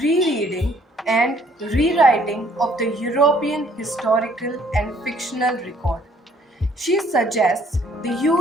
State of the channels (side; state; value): both; normal; correlation 0.61